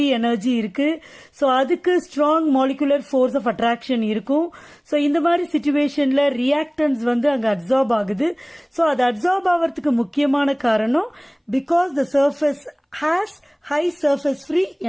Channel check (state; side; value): identical; both; correlation 1.00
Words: energy இருக்கு. So அதுக்கு strong molecular force of attraction இருக்கும். So இந்த மாதிரி situationல reactants அங்க absorb ஆகுது. So அது absorb ஆவறதுக்கு முக்கியமான காரணம் because the surface has high surface free